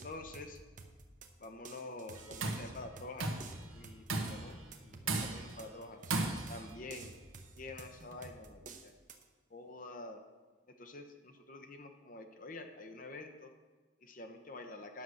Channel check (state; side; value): normal; both; correlation 0.41